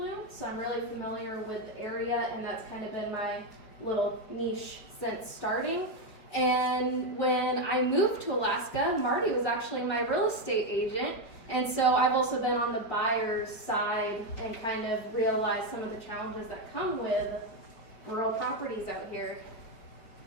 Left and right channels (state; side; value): late; right; 4.9 ms